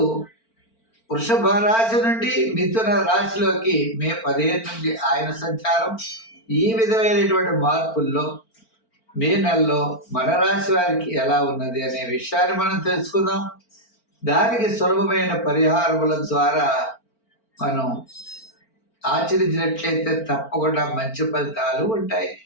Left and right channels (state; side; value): late; right; 4.4 ms